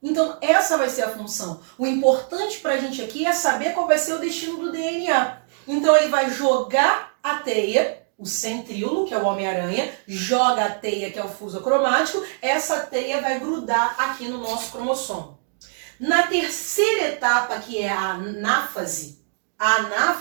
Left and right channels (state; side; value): silent; left; 64 dB below the other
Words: Então, essa vai ser a função. O importante para a gente aqui é saber qual vai ser o destino do DNA. Então, ele vai jogar a teia, o centríolo, que é o Homem-Aranha, joga a teia, que é o fuso acromático, essa teia vai grudar aqui no nosso cromossomo. Na terceira etapa, que é a anáfase